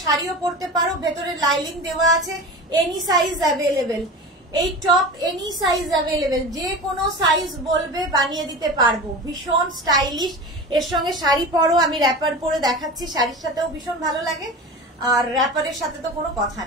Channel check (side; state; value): both; normal; correlation 0.31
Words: শাড়িও পরতে পারো, ভেতরে লাইলিং দেওয়া আছে, এনি সাইজ অ্যাভেলেবেল। এই টপ এনি সাইজ অ্যাভেলেবেল, যে কোনো সাইজ বলবে বানিয়ে দিতে পারবো। ভীষণ স্টাইলিশ, এর সঙ্গে শাড়ি পরো, আমি র্যাপার পরে দেখাচ্ছি, শাড়ির সাথেও ভীষণ ভালো লাগে। আর র্যাপারের সাথে তো কোনো কথা